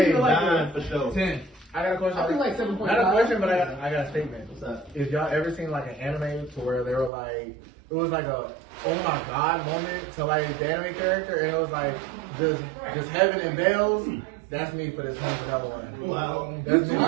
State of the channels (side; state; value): left; drops out; at 7.1 s